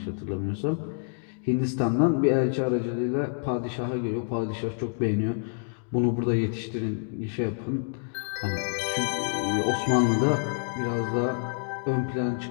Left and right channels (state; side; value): silent; right; digital silence